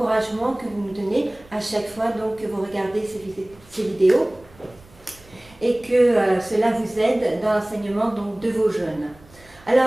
que vous nous donnez à chaque fois donc, que vous regardez ces vidéos et que cela vous aide dans l'enseignement donc, de vos jeunes.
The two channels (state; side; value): noise; right; rumble, 26 dB below the sound